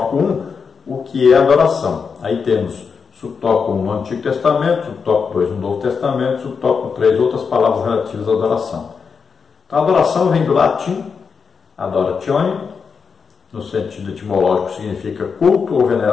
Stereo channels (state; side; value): quieter; right; 5.7 dB